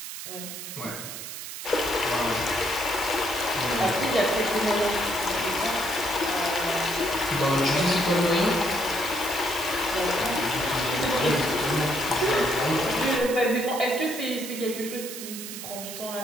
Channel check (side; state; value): right; noise; hiss, 9 dB below the sound